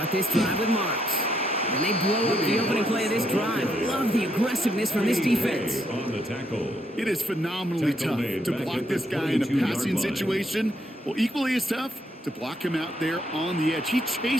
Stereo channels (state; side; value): normal; both; correlation 0.74